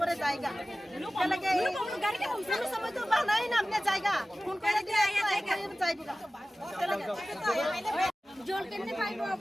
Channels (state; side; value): normal; both; correlation 0.96